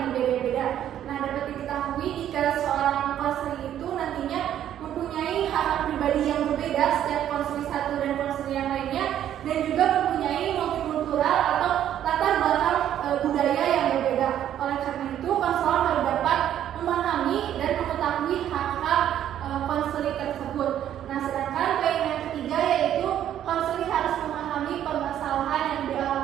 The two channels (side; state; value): left; quieter; 10.9 dB